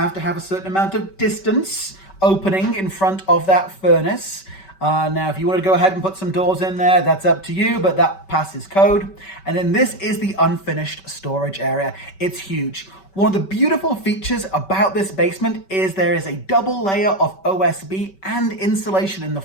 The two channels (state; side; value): late; right; 5.2 ms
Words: to have a certain amount of distance opening in front of that furnace. Now, if you want to go ahead and put some doors in there, that's up to you, but that passes code. And then this is the unfinished storage area. It's huge. One of the beautiful features about this basement is there is a double layer of OSB and insulation in the